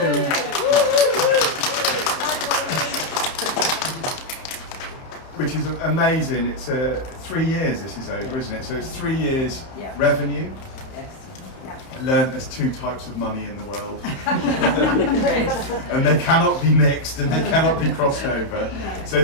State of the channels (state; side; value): late; right; 31 ms